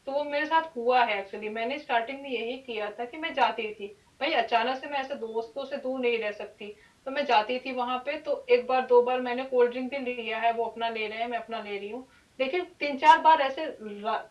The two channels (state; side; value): identical; both; correlation 1.00